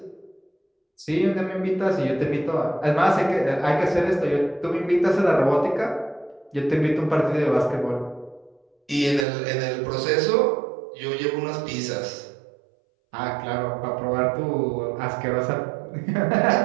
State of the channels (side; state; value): left; drops out; at 9.2 s